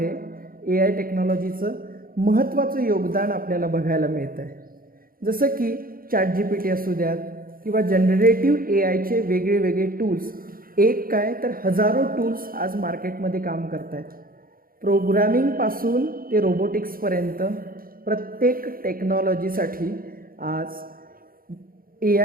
AI टेक्नॉलॉजीचं महत्त्वाचं योगदान आपल्याला बघायला मिळतं आहे. जसं की ChatGPT असू द्यात किंवा जनरेटिव्ह AIचे वेगळे वेगळे टूल्स, एक काय तर हजारो टूल्स आज मार्केटमध्ये काम करत आहेत. प्रोग्रामिंगपासून ते रोबोटिक्सपर्यंत प्रत्येक टेक्नॉलॉजीसाठी आज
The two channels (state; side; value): late; left; 0.42 ms